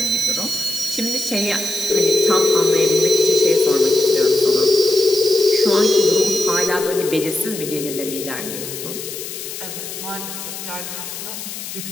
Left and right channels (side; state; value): left; noise; hiss, 9 dB below the sound